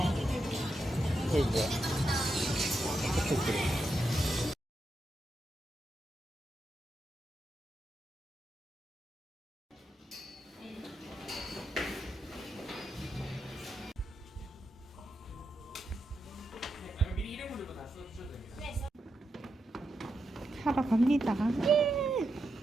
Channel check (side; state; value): both; normal; correlation 0.86